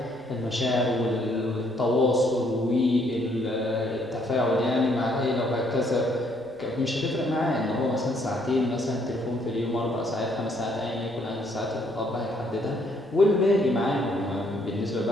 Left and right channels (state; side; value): noise; right; rumble, 28 dB below the sound